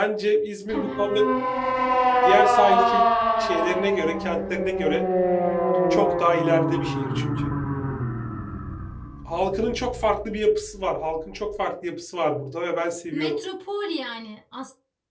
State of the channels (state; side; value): identical; both; correlation 1.00